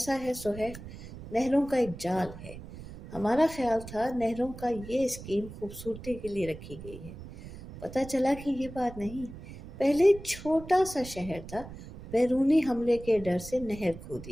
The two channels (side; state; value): right; noise; rumble, 14 dB below the sound